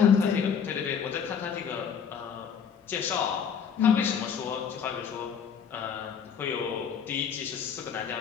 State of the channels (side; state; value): right; quieter; 7.1 dB